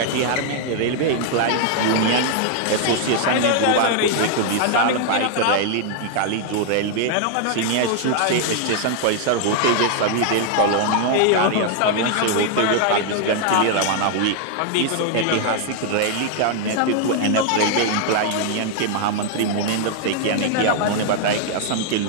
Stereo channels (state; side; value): different; both; correlation 0.00